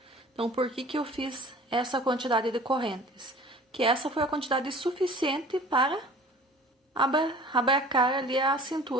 Então, por que eu fiz essa quantidade de correntes? Que essa foi a quantidade suficiente para abarcar ali a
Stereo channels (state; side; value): normal; both; correlation 0.46